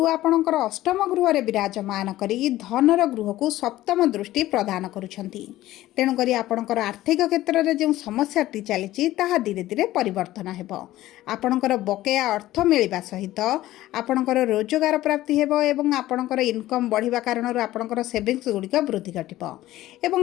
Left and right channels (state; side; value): quieter; right; 15.5 dB